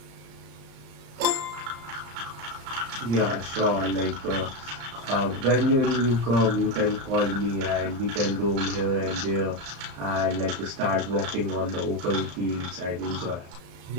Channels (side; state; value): left; late; 35 ms